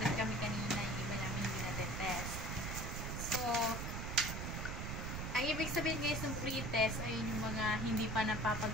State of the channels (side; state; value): right; noise; rumble, 3 dB below the sound